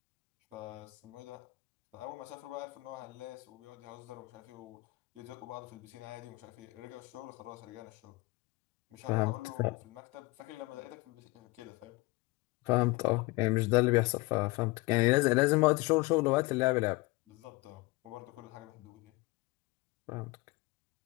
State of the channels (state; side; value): quieter; right; 23.1 dB